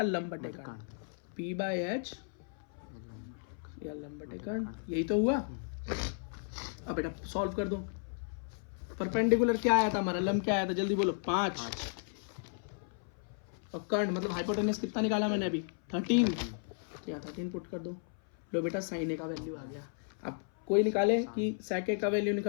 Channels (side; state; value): right; silent; 55 dB below the other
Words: लंब बटे कर्ण, पी बाई एच या लंब बटे कर्ण, यही तो हुआ। अब बेटा सॉल्व कर दो। परपेंडिकुलर क्या आया था हमारा, लंब क्या आया था, जल्दी बोलो, 5। और कर्ण मतलब हाइपोटेनस कितना निकाला मैंने अभी, 13। क्या 13 पुट कर दो। लो बेटा साइन ए का वैल्यू आ गया। अब कोई निकाले कि सेक ए का वैल्यू